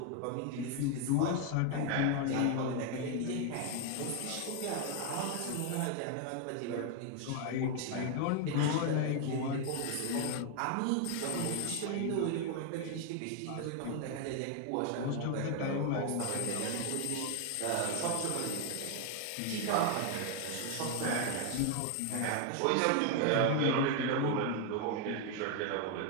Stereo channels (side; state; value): both; different; correlation 0.01